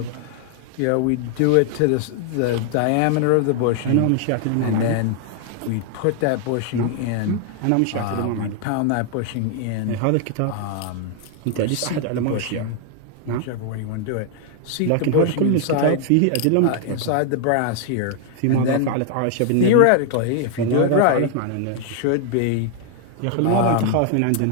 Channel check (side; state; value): both; different; correlation 0.00